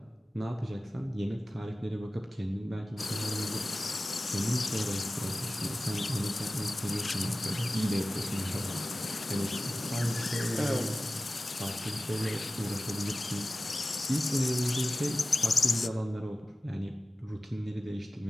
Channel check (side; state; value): both; normal; correlation 0.96